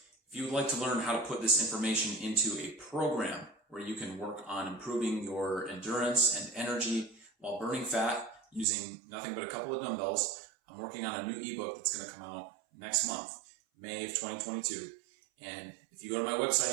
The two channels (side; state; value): left; drops out; at 8.7 s